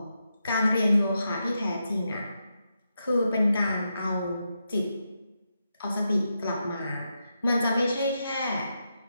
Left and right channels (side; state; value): both; inverted; correlation -0.85